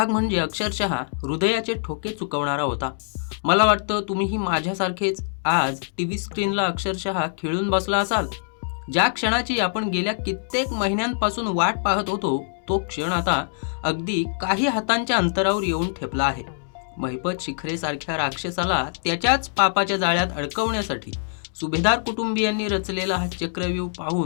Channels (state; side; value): silent; right; digital silence